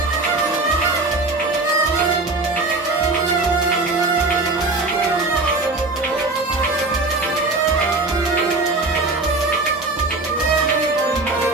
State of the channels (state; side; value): quieter; left; 3.3 dB